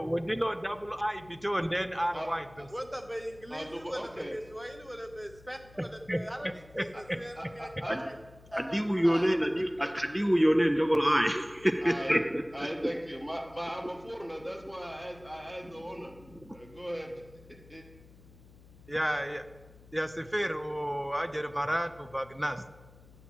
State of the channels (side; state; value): left; noise; hum, 23 dB below the sound